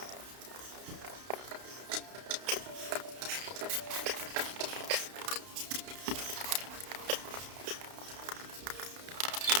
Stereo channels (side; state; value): left; late; 32 ms